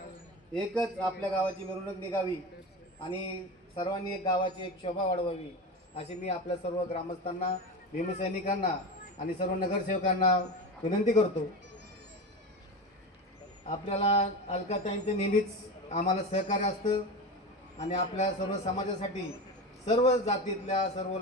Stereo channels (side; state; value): both; normal; correlation 0.24